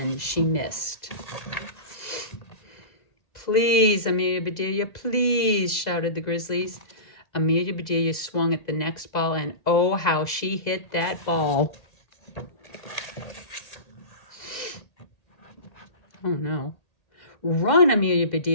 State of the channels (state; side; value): late; right; 2.0 ms